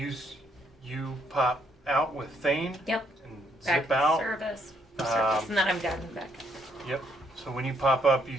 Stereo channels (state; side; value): normal; both; correlation 0.72